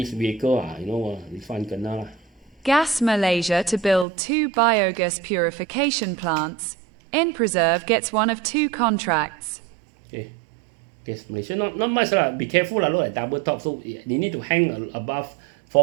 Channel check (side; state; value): left; drops out; at 4.0 s